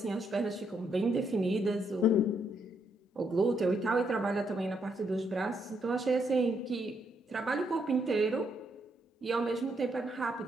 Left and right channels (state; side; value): normal; both; correlation 0.76